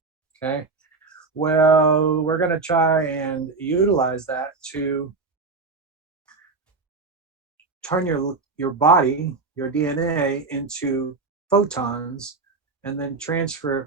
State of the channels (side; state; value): left; quieter; 4.0 dB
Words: okay? Well, we're going to try and utilize that to turn your body, your DNA, into photons, and then transfer